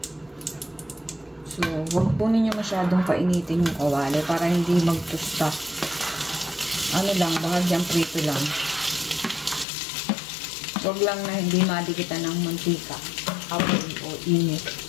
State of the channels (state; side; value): drops out; right; at 9.7 s